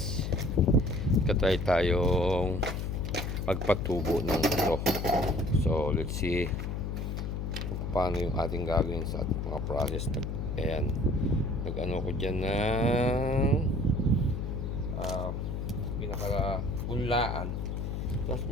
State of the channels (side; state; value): left; noise; hum, 3 dB below the sound